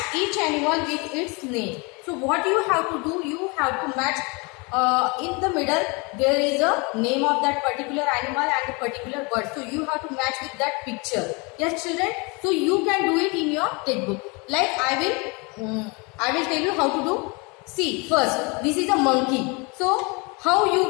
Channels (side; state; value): right; quieter; 29.3 dB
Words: each animal with its name. So what you have to do? You have to match. In the middle there is a name of that particular animal and a particular bird. So you have to match with that picture. Yes, children. So you can do it in your textbook. Like I will tell you how to do. See, first this is a monkey. So how you